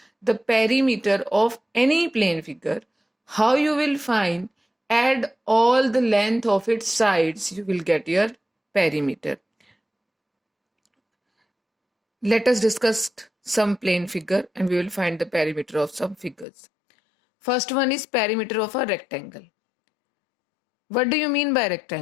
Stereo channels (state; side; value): drops out; right; at 16.4 s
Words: the perimeter of any plane figure, how you will find? Add all the length of its sides, you will get your perimeter. Let us discuss some plane figure and we will find the perimeter of some figures. First one is perimeter of a rectangle. What do you mean by